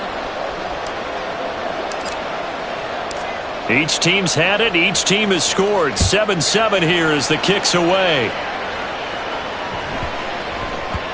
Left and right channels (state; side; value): identical; both; correlation 1.00